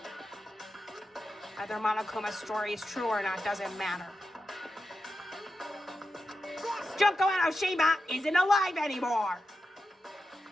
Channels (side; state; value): both; normal; correlation 0.89